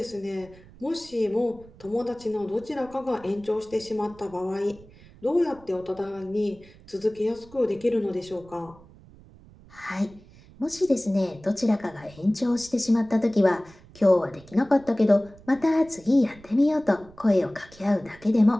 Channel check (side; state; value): right; noise; rumble, 23 dB below the sound